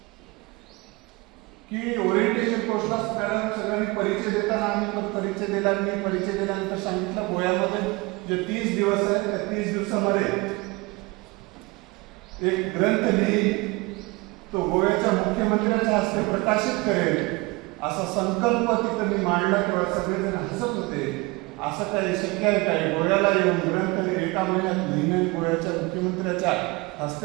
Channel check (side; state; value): left; quieter; 24.3 dB